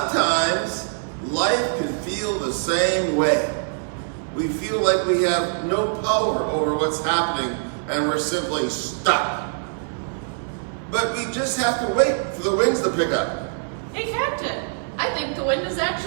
life can feel the same way. We feel like we have no power over what's happening and we're simply stuck. But we just have to wait for the winds to pick up. Hey, Captain, I think the wind is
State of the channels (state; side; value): silent; left; 61 dB below the other